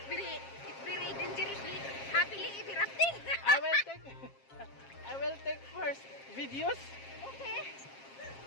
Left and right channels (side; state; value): right; late; 7.5 ms